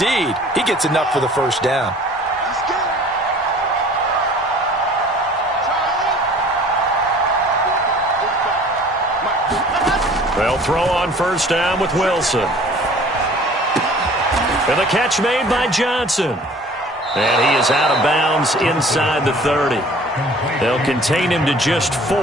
he gets enough for the first down. They'll throw on first down with Wilson. And the catch made by Johnson. And he is out of bounds inside the 30. They'll contain him to just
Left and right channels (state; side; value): normal; both; correlation 0.49